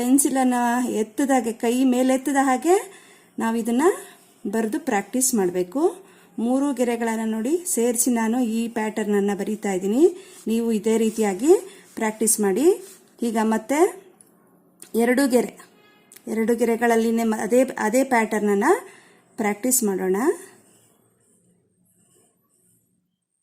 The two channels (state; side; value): identical; both; correlation 1.00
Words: ಎತ್ತದಾಗೆ, ಕೈ ಮೇಲೆತ್ತದ ಹಾಗೆ ನಾವು ಇದನ್ನು ಬರೆದು ಪ್ರಾಕ್ಟೀಸ್ ಮಾಡಬೇಕು. 3 ಗೆರೆಗಳನ್ನು ನೋಡಿ ಸೇರಿಸಿ ನಾನು ಈ ಪ್ಯಾಟರ್ನನ್ನು ಬರೀತಾ ಇದ್ದೀನಿ. ನೀವು ಇದೇ ರೀತಿಯಾಗಿ ಪ್ರಾಕ್ಟೀಸ್ ಮಾಡಿ. ಈಗ ಮತ್ತೆ 2 ಗೆರೆಗಳಲ್ಲಿ ಅದೇ ಪ್ಯಾಟರ್ನನ್ನು ಪ್ರಾಕ್ಟೀಸ್ ಮಾಡೋಣ.